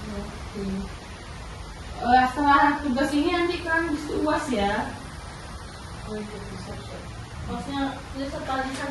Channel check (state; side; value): identical; both; correlation 1.00